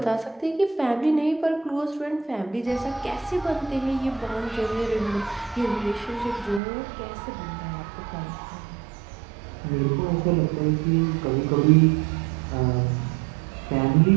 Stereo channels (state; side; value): drops out; left; at 6.6 s